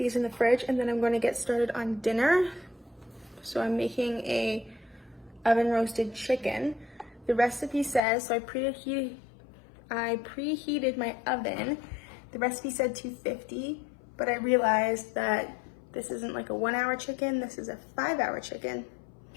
in the fridge and then I'm gonna get started on dinner. So I'm making a oven roasted chicken. The recipe says, so I preheated my oven. The recipe said 250, but I realized that this isn't like a 1 hour chicken, this is a 5 hour chicken.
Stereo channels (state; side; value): drops out; right; at 8.0 s